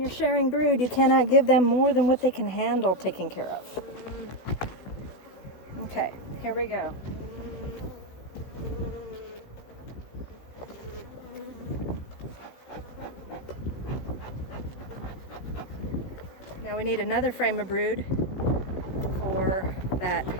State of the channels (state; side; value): late; right; 16 ms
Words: sharing brood, you cannot give them more than what they can handle taking care of. Okay, here we go. Now we need another frame of brood for that